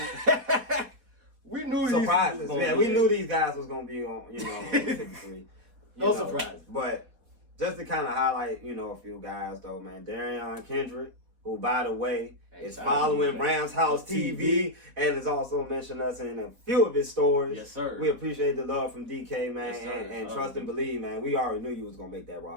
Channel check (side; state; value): left; late; 4.1 ms